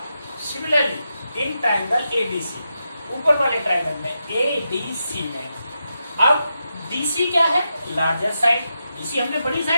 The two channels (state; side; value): inverted; both; correlation -0.87